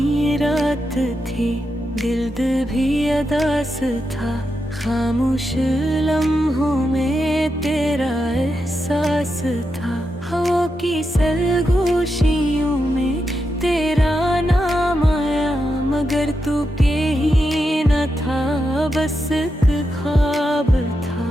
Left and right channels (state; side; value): normal; both; correlation 0.86